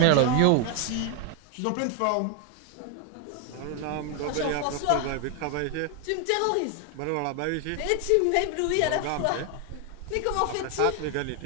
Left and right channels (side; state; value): both; different; correlation 0.01